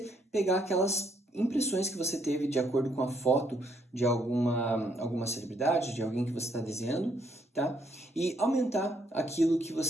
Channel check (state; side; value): normal; both; correlation 0.71